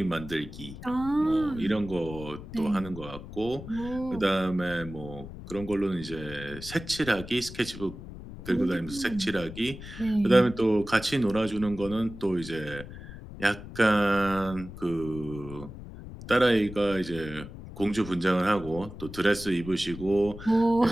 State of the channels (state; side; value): noise; left; rumble, 13 dB below the sound